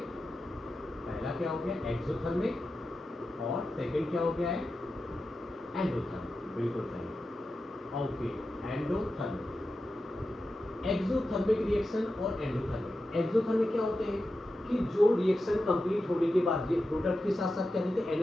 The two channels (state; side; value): normal; both; correlation 0.91